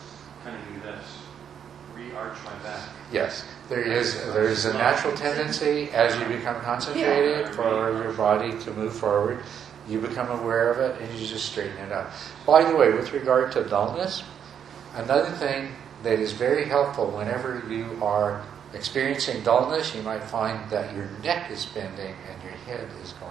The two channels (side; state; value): left; quieter; 8.4 dB